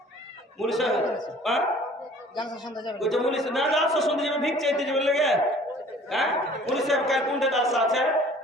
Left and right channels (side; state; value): both; normal; correlation 0.51